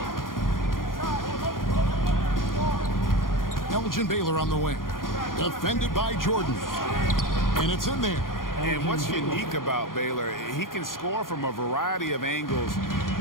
Elgin Baylor on the wing. Defended by Jordan. And it's in there. And what's unique about Baylor, he can score from a variety of angles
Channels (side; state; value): right; late; 0.91 ms